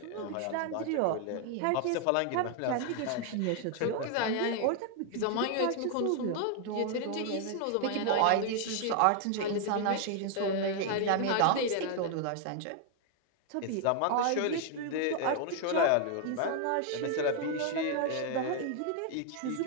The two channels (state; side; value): different; both; correlation 0.00